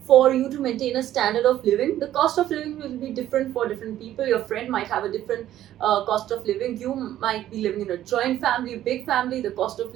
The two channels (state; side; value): quieter; left; 12.6 dB